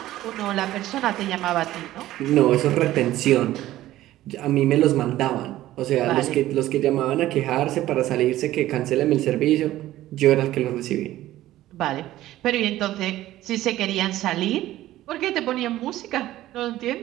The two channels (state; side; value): quieter; left; 14.8 dB